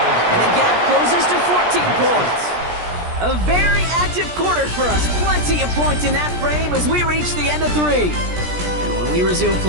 And the gap closes to 14 points. A very active quarter for us. Plenty of points in that frame as we reach the end of 3. And when we resume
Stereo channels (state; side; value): late; left; 17 ms